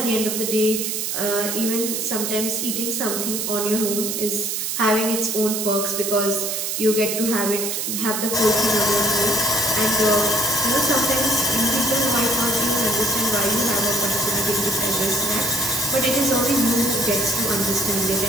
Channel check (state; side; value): noise; right; hiss, 2 dB below the sound